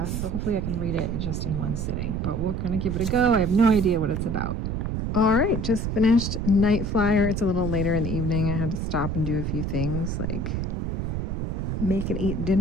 So hopefully I can read it just in one sitting, but we're going to give it a go. I have no idea what it's about. All right, just finished Night Flier. It's a little later in the evening. I had to stop and do a few things like make and eat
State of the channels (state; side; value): noise; right; rumble, 1 dB below the sound